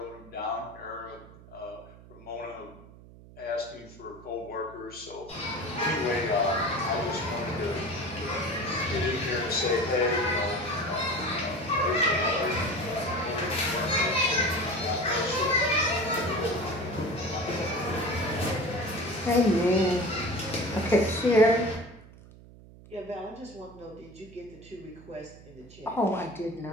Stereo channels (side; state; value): right; noise; hum, 20 dB below the sound